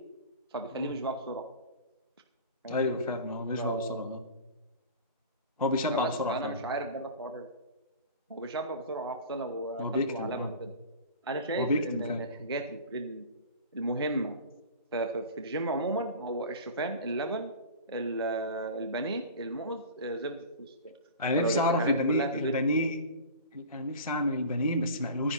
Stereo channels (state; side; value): inverted; both; correlation -0.37